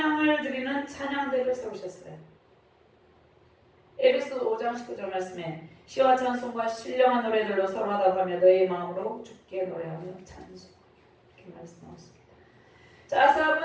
드리는 찬양대를 세우셨어요. 에베소 5장 19절 말씀에 시와 찬송과 신령한 노래들로 서로하다가며 너희 마음으로 주께 노래하며 찬송, 이렇게 말씀하셨습니다. 자,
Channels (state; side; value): identical; both; correlation 1.00